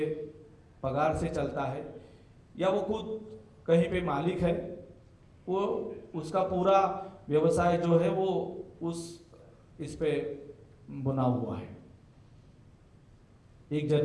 पगार से चलता है, या वो खुद कहीं पे मालिक है, वो उसका पूरा व्यवसाय जो है वो इस पे बुना हुआ है। एक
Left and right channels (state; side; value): identical; both; correlation 1.00